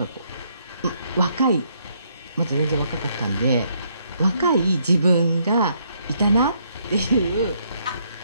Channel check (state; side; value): inverted; both; correlation -0.72